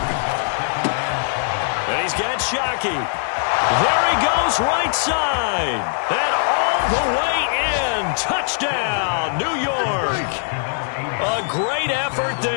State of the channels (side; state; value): right; silent; digital silence